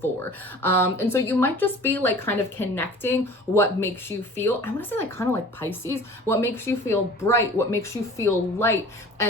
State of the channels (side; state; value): both; normal; correlation 0.44